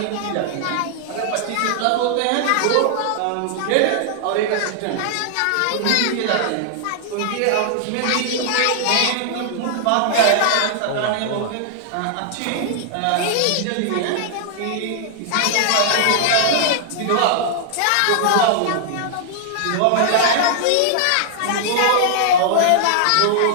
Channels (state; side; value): different; both; correlation -0.01